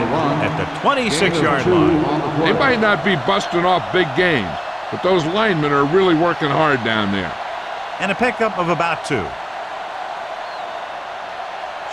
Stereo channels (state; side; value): identical; both; correlation 1.00